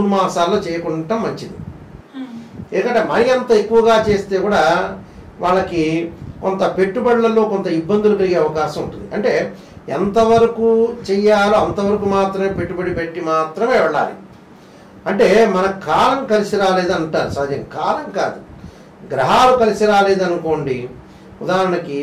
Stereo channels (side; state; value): both; identical; correlation 1.00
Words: మాసాల్లో చేయకుండా మంచిది. ఎందుకంటే మరీ అంత ఎక్కువగా చేస్తే కూడా వాళ్ళకి కొంత పెట్టుబడులలో కొంత ఇబ్బందులు కలిగే అవకాశం ఉంటుంది. అంటే ఎంతవరకు చెయ్యాలో అంతవరకు మాత్రమే పెట్టుబడి పెట్టి మాత్రమే వెళ్ళాలి. అంటే మన కాలం కలిసి రాలేదంటారు. సహజంగా కాలం కాదు, గ్రహాలు కలిసి రాలేదనుకోండి. ఉదాహరణకి